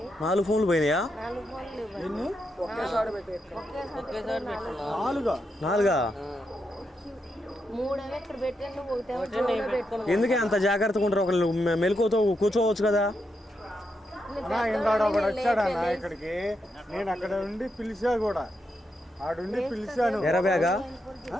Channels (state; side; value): normal; both; correlation 0.83